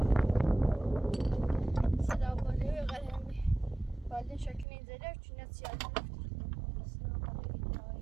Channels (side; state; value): left; drops out; at 4.7 s